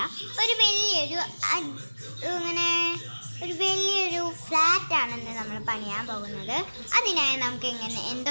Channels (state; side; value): inverted; both; correlation -1.00